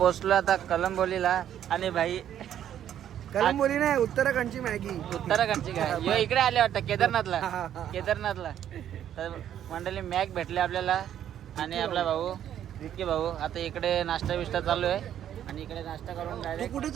आता कलंबोलीला. आणि भाई कलंबोली नाही, उत्तराखंडची मॅगी. उत्तराखंडची काय इकडे आले वाटतं केदारनाथला. तर मंडळी मॅक भेटले आपल्याला. आणि आपला भाऊ विक्की भाऊ आता इकडे नाश्ता बिष्टा चालू आहे. आणि इकडे नाश्ता करून डायरेक्ट कुठे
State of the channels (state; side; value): quieter; left; 10.5 dB